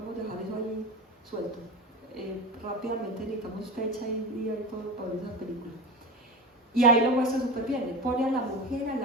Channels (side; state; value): both; normal; correlation 0.27